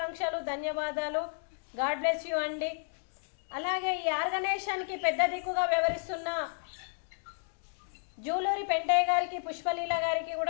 ధన్యవాదాలు. గాడ్ బ్లెస్ యూ అండి. అలాగే ఈ ఆర్గనైజేషన్కి పెద్ద దిక్కుగా వ్యవహరిస్తున్న జూలూరి పెంటయ్య గారికి, పుష్పలీల గారికి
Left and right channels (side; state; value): right; silent; digital silence